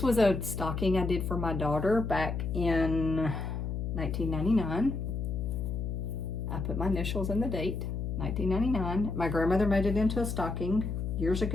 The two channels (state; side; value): noise; left; hum, 3 dB below the sound